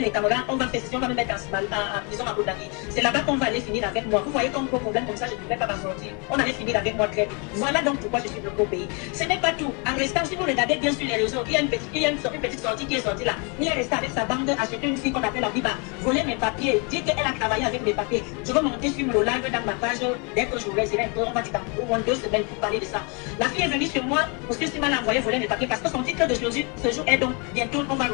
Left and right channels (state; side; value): quieter; right; 33.4 dB